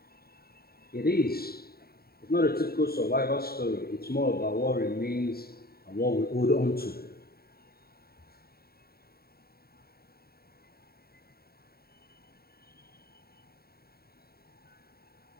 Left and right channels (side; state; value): right; late; 0.45 ms